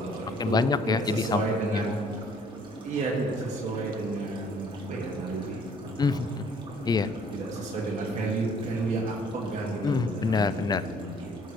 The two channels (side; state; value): both; normal; correlation 0.59